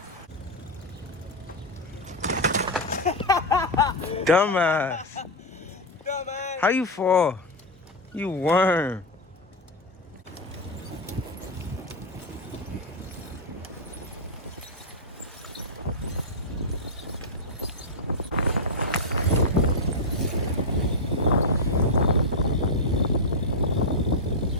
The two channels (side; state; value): both; normal; correlation 0.02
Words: Dumbass. Dumbass. How you fall? You worm.